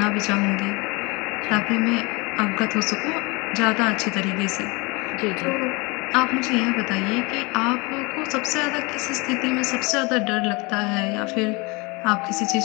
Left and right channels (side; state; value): right; quieter; 26.9 dB